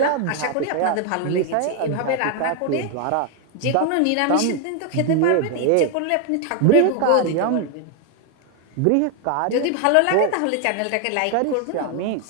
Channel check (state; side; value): different; both; correlation 0.01